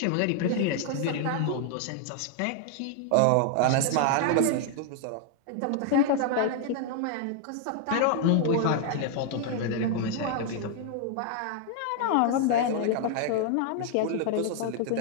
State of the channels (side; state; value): both; different; correlation 0.00